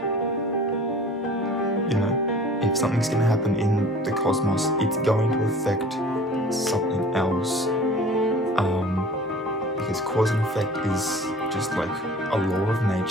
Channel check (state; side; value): normal; both; correlation 0.45